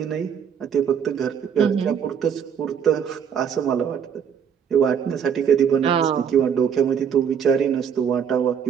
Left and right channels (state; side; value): quieter; left; 7.7 dB